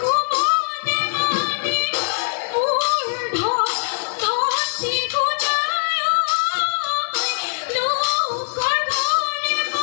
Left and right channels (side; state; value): right; silent; digital silence